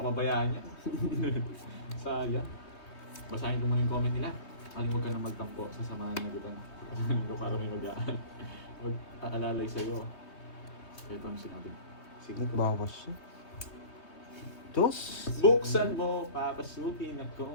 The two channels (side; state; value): right; late; 3.2 ms